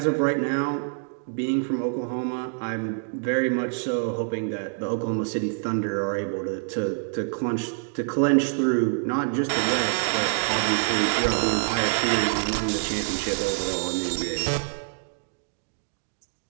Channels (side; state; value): left; silent; digital silence